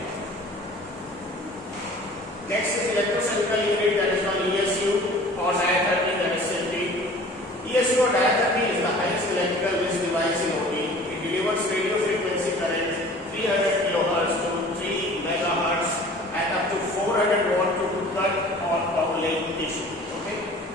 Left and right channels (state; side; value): normal; both; correlation 0.46